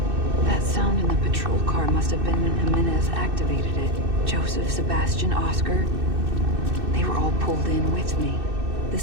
That sound in the patrol car must have been when Jimenez activated it. Joseph, Sebastian, Oscar. They were all pulled in with me. The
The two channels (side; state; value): left; late; 2.6 ms